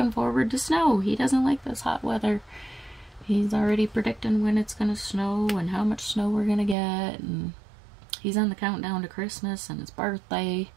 forward to snow. He doesn't like this hot weather. He's already predicting when it's gonna snow and how much snow we're gonna get, and he's on the countdown to Christmas and his birthday.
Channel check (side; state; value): left; drops out; at 6.8 s